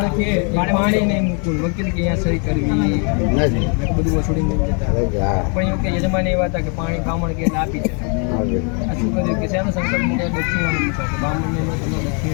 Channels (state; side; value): quieter; right; 38.2 dB